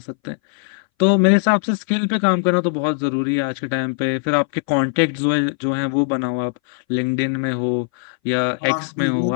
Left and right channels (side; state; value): right; silent; 62 dB below the other